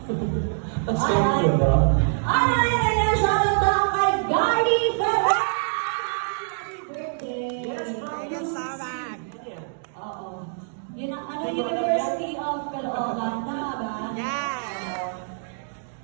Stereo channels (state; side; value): silent; left; digital silence